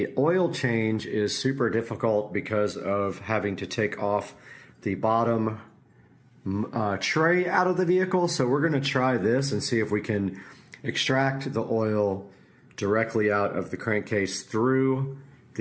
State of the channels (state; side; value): identical; both; correlation 1.00